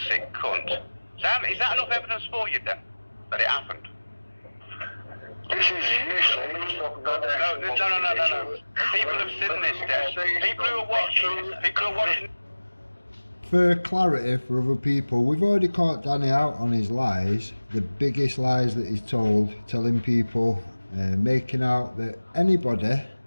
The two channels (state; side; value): inverted; both; correlation -1.00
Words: cunt. Is that enough evidence for you then, that it happened? This is useless. No. People have seen this, Des. People who are watching. For clarity for other people, we've already caught Danny out on his lies, the biggest lies that he's told, telling people, making out that anybody